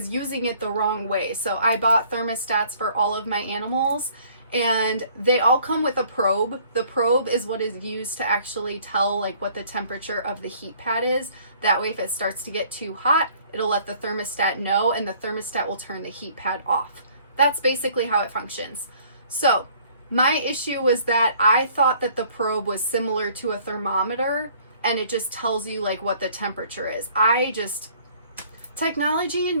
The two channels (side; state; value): both; inverted; correlation -0.57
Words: using it the wrong way. So I bought thermostats for all of my animals and they all come with a probe. The probe is what is used to actually tell like what the temperature of the heat pad is. That way if it starts to get too hot, it'll let the thermostat know and the thermostat will turn the heat pad off. That's basically how it functions. So my issue was that I thought that the probe was similar to a thermometer and it just tells you like what the temperature is. Technology and